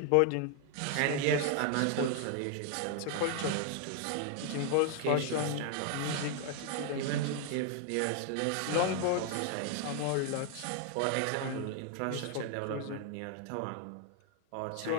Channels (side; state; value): both; different; correlation 0.00